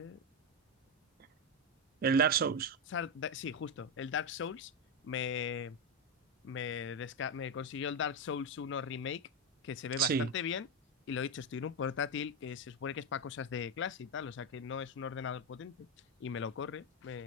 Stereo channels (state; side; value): normal; both; correlation 0.08